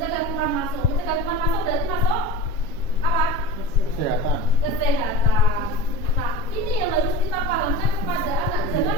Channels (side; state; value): right; late; 7.3 ms